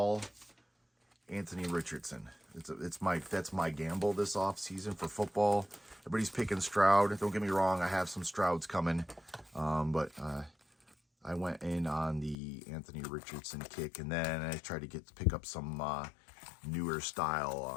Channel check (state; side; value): drops out; right; at 12.4 s